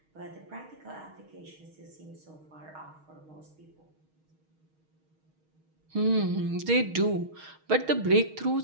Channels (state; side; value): late; left; 6.4 ms